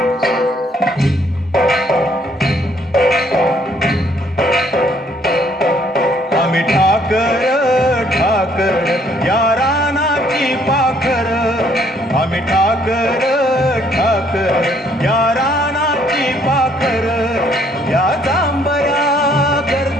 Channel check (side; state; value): both; normal; correlation 0.65